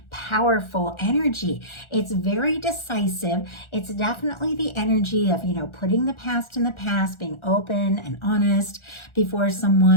powerful energy. It's very decisive. It's definitely the energy of, putting the past in the past, being open and honest before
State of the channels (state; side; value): late; right; 1.4 ms